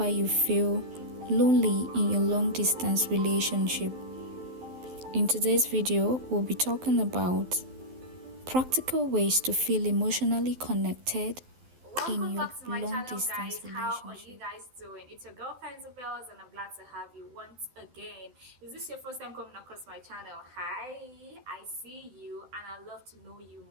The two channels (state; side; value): late; left; 12 ms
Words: you feel lonely in your long-distance relationship. In today's video, we'll be talking about practical ways to feel emotionally connected in your long-distance relationship. How are you guys doing? It's your girl Bells, and I'm glad to have you once again. Is this your first time coming across my channel? Hi, I see you and I'd love to know you